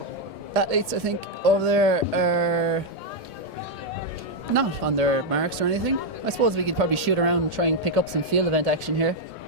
Athletes, I think, over there are not on their marks or anything. I suppose we could probably shoot around and try and pick up some field event action here.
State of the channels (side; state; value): both; normal; correlation -0.01